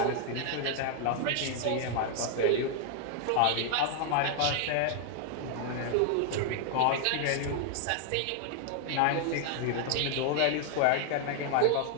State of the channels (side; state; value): both; different; correlation 0.00